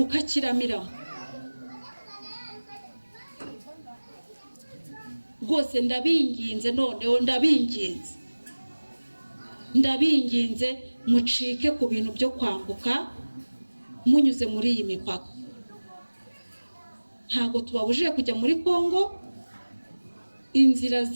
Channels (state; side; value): inverted; both; correlation -1.00